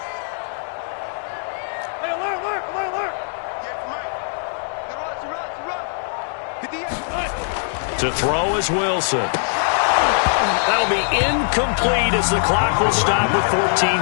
To throw is Wilson. That'll be incomplete as the clock will stop with 14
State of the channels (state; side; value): silent; right; digital silence